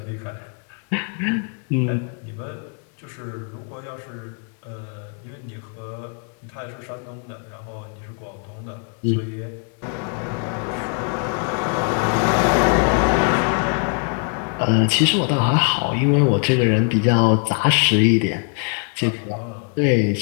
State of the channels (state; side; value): quieter; right; 39.2 dB